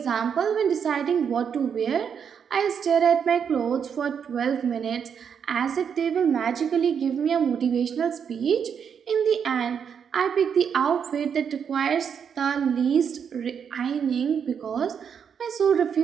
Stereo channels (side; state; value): left; quieter; 7.3 dB